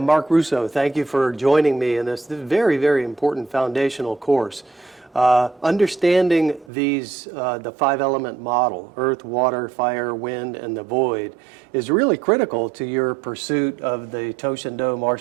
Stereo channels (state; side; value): drops out; left; at 6.7 s